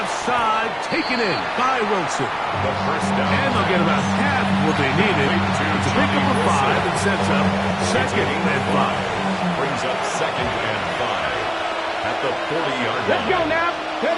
side, taken in by Wilson. And they'll get about half of what they needed. It's a pick up of 5 and sets up 2nd and 5. Brings up 2nd and 5 at the 40-yard line. Let's go now.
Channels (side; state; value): both; identical; correlation 1.00